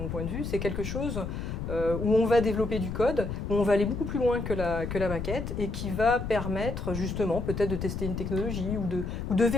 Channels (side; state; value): left; noise; rumble, 5 dB below the sound